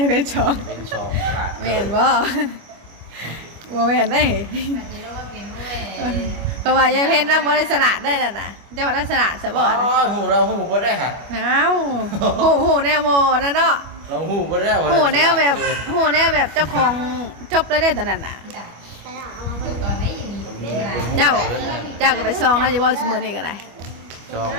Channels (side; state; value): left; late; 25 ms